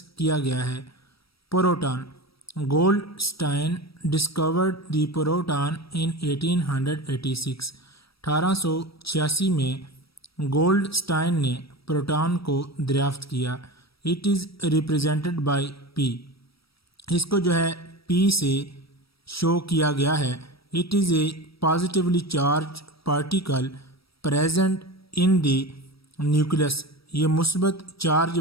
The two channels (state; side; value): late; right; 0.76 ms